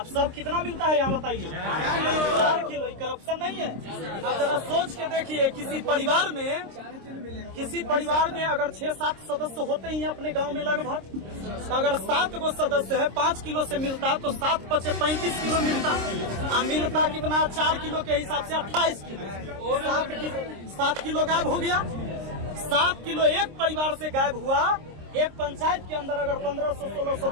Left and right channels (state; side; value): late; left; 26 ms